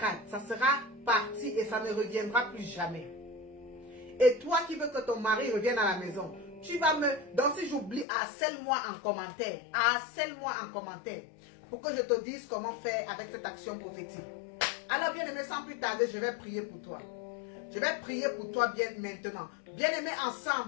ça sera parti et ça ne reviendra plus jamais. Et toi qui veux que ton mari revienne à la maison, tu vas me... Donc si j'oublie, harcèle-moi en commentaire. Harcèle-moi en commentaire. Pour que je te dise comment faire avec cette action prophétique. Alors bien aimé, sans plus tarder, je vais prier pour toi. Je vais prier pour toi bien maintenant. Bien aimé,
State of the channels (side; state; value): right; drops out; at 8.1 s